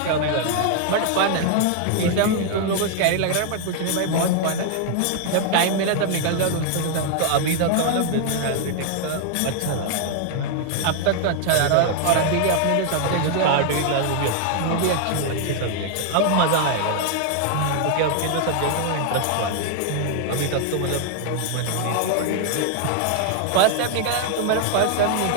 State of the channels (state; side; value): different; both; correlation 0.00